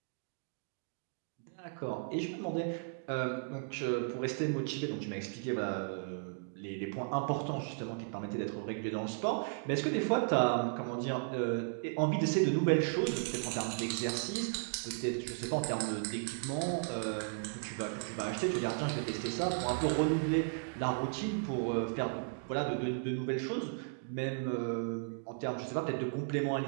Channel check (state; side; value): silent; left; digital silence